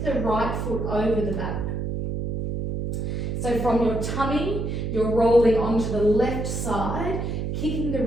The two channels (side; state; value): right; noise; hum, 2 dB below the sound